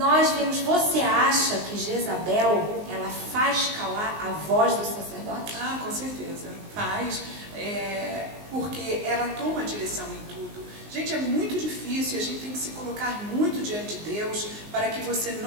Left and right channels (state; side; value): late; left; 19 ms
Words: vimos, você acha que Jezabel, ela faz calar a voz do sacerdote? Ah, com certeza, faz, porque ela toma a direção em tudo. Gente, é muito difícil, a gente tem que se colocar muito diante de Deus para que você